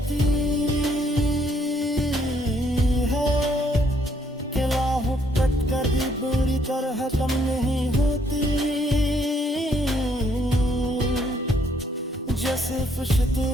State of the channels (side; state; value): both; normal; correlation 0.68